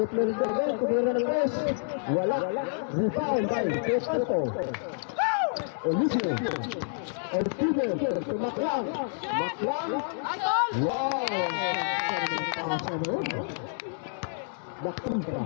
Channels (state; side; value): silent; right; digital silence